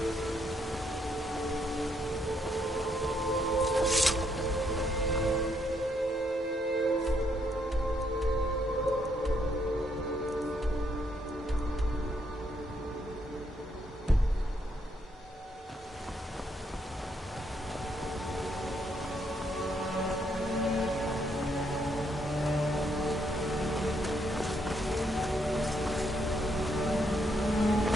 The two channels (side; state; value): both; normal; correlation 0.74